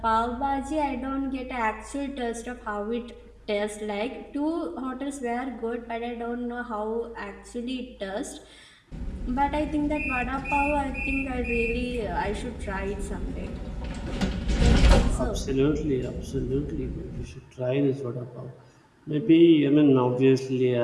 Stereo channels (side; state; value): both; identical; correlation 1.00